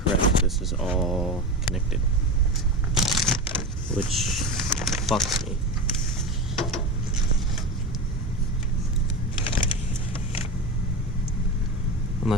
this is all connected, which fucks me.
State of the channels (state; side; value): normal; both; correlation 0.24